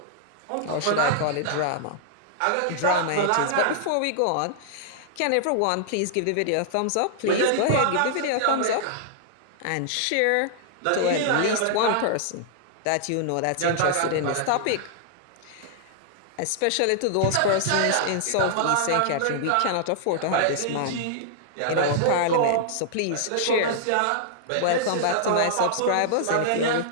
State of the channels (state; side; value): different; both; correlation -0.01